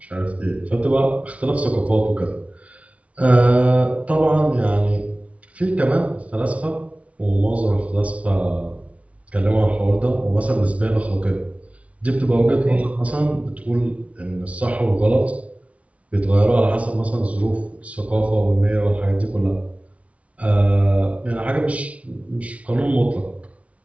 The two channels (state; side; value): late; left; 0.065 ms